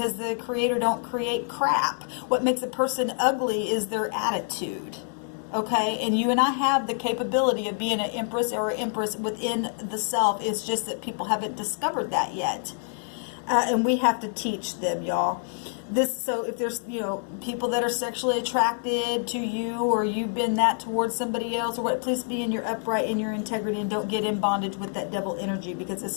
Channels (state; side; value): silent; right; digital silence